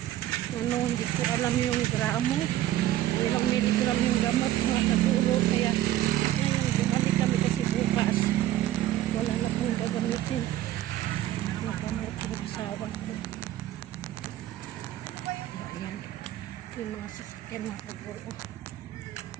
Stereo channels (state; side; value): quieter; left; 13.7 dB